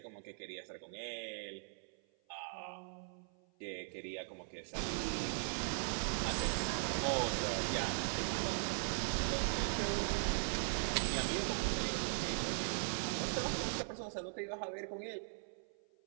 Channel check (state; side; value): silent; left; 51 dB below the other